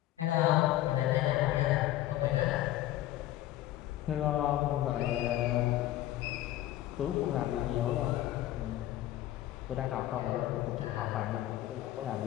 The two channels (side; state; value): right; quieter; 14.3 dB